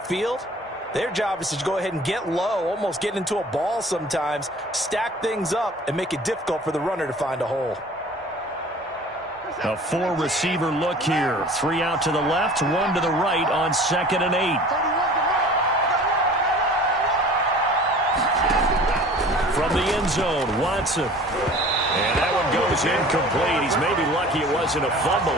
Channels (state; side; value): normal; both; correlation 0.45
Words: their job is to go ahead and get low, almost get into a ball sometimes, stack things up, and make it difficult for the runner to find a hole. A 4-receiver look here. 3 out to the left, 1 to the right on 2nd and 8. From the end zone, Watson. And that one goes incomplete. He's maybe lucky it wasn't a